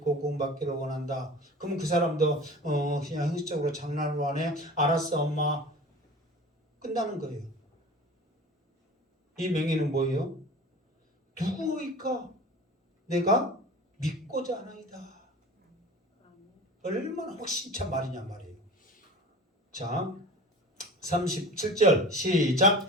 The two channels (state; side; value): normal; both; correlation 0.38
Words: 구원받기를 원한다. 그러면 그 사람도 그냥 형식적으로 장난으로 하네. 알았어 엄마. 끝나는 거예요. 이 맹인은 뭐예요? 누구이까 내가 믿고자 하나이다. 얼마나 확신찬 말이냐 말이에요. 자 37절